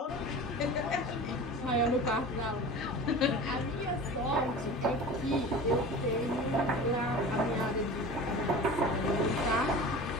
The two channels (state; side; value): normal; both; correlation 0.36